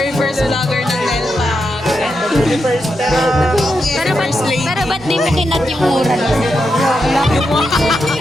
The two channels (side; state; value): both; normal; correlation 0.85